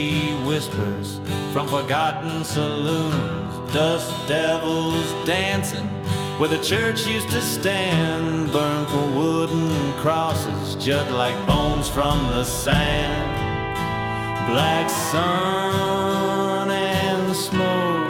whispers from forgotten saloons. Dust devils dancing where the church used to stand, burned for wooden crosses, jut like bones from the sand. Black sun and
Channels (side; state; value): both; identical; correlation 1.00